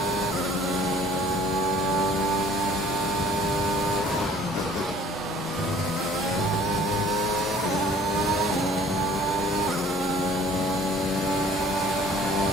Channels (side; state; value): both; normal; correlation 0.53